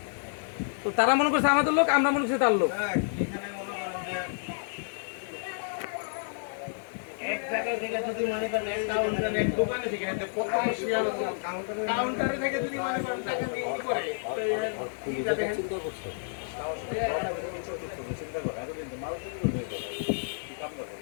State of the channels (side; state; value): right; silent; digital silence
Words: তো তারা মনে করছে আমাদের লোক, আমরা মনে করছি তার লোক। এক জায়গায় থেকে যদি মনে করেন এক কাউন্টারে এক দোকানে থেকে প্রথম কাউন্টারে থেকে যদি মনে করেন টাকা দিয়ে কি করে চিন্তা করছে